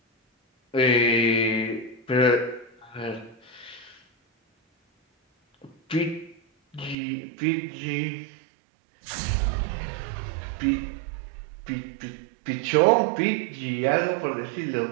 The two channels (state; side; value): drops out; left; at 7.0 s